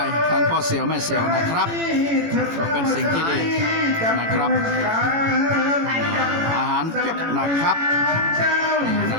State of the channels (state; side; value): late; left; 18 ms